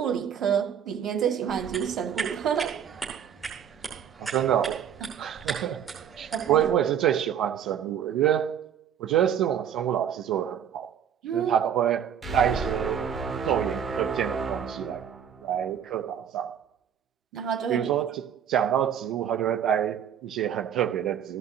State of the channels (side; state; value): left; quieter; 8.8 dB